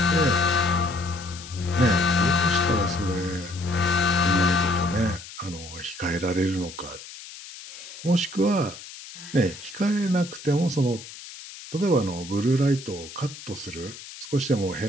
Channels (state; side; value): noise; left; hiss, 15 dB below the sound